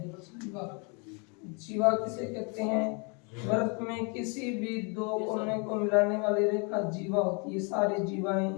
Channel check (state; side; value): quieter; right; 33.9 dB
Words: जीवा किसे कहते हैं? वृत्त में किसी भी दो कोने को मिलाने वाली रेखा जीवा होती है। सारी जीवाएं